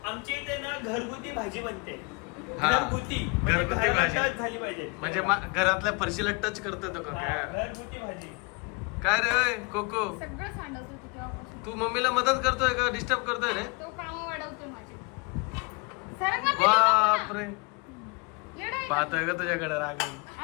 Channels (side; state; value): right; quieter; 29.3 dB